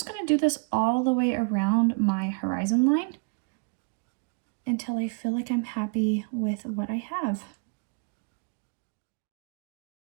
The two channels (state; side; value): quieter; left; 36.7 dB